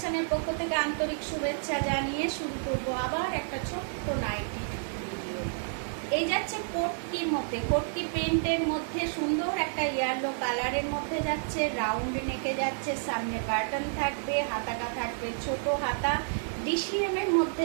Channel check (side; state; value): left; silent; digital silence